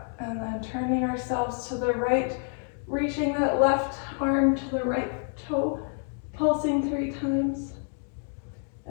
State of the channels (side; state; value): right; silent; 56 dB below the other